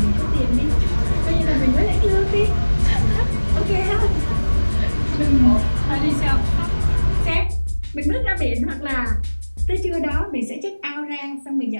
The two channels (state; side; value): inverted; both; correlation -1.00